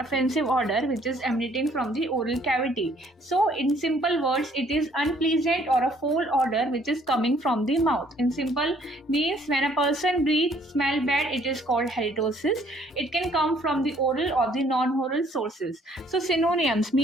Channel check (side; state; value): both; normal; correlation 0.62